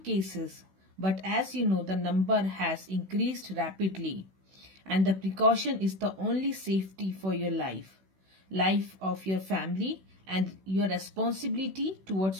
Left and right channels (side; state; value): left; late; 16 ms